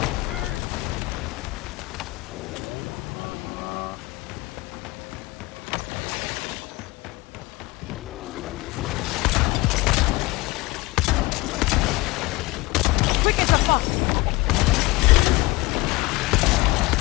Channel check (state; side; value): quieter; right; 21.6 dB